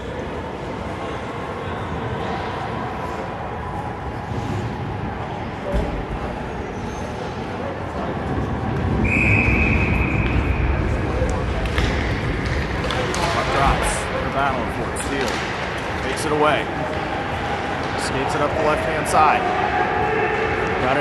Battling for it. Steel takes it away. Skates it up the left-hand side. Got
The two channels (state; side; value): identical; both; correlation 1.00